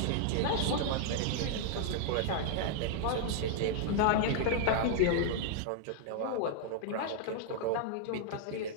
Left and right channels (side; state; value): both; different; correlation -0.01